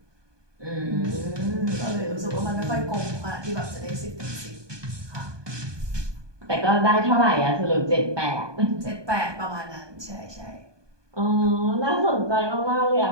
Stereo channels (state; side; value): late; left; 1.2 ms